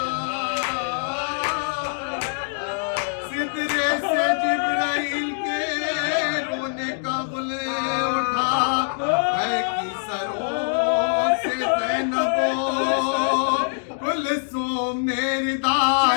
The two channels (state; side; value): silent; right; digital silence